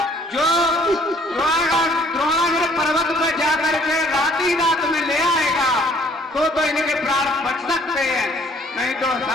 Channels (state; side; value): normal; both; correlation 0.59